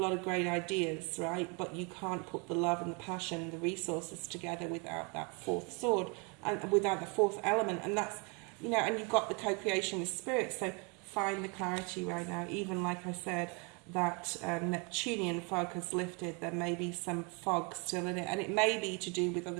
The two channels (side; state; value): left; quieter; 32.7 dB